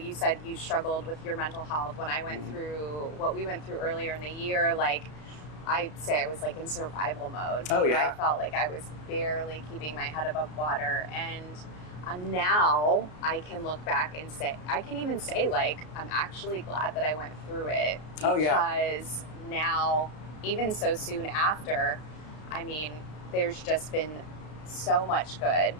said you struggled with your mental health when I went through what we went through earlier in the year. Like, I say I was like in survival mode. Oh, yeah. I felt like I was barely keeping my head above water. And now I can look back and say, I can even say, like, I'm actually glad that I went through it. Because Oh, yeah. now, even so soon after, I mean, there's just been so much good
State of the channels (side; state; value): right; late; 33 ms